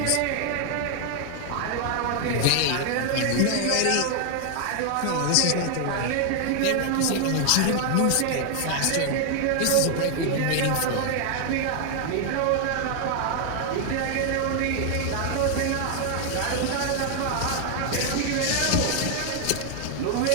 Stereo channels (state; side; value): different; both; correlation 0.00